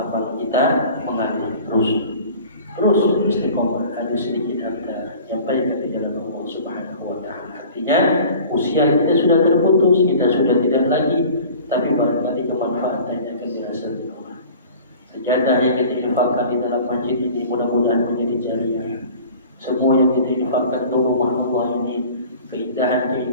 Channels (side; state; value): both; inverted; correlation -0.44